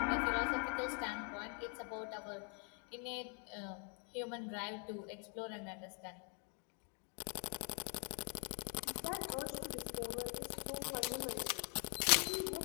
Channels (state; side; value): quieter; right; 39.8 dB